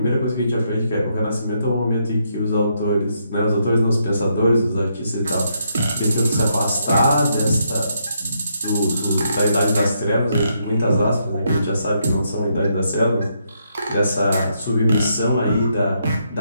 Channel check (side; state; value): both; inverted; correlation -0.77